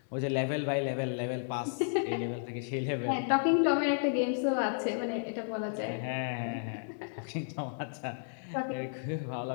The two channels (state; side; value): silent; right; digital silence